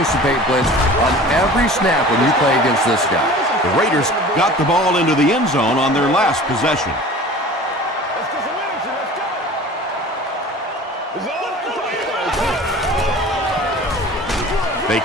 blitz on every snap when you play against this guy. The Raiders got the ball into the end zone on their last possession. They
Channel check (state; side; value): normal; both; correlation 0.42